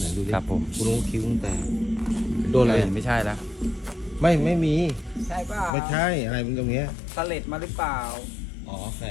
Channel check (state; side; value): drops out; right; at 5.7 s